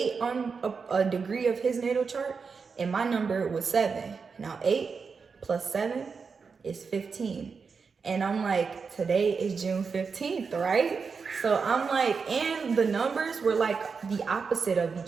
on a degree of his natal chart, and my number was 7. Now 8 plus 7 is 15. And I'm like, today is June 15th, right? So I'm like, and the numbers were like the opposite of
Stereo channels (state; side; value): quieter; left; 5.3 dB